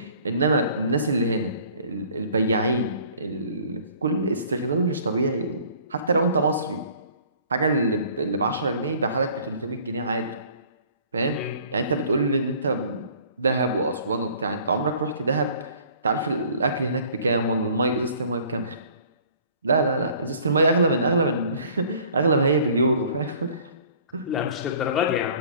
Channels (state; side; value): inverted; both; correlation -0.53